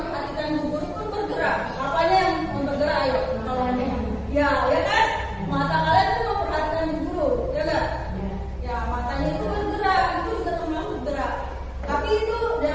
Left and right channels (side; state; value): both; identical; correlation 1.00